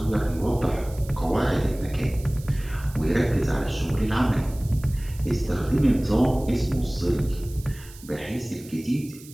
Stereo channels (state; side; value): noise; right; hiss, 20 dB below the sound